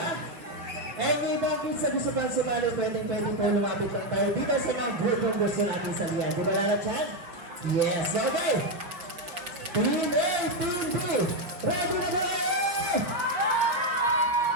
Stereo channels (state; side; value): late; left; 5.7 ms